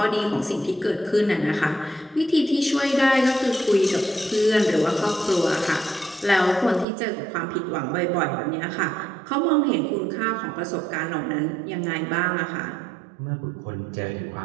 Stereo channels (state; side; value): drops out; left; at 6.9 s